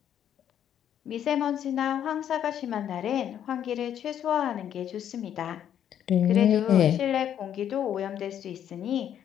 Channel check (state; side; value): quieter; right; 9.9 dB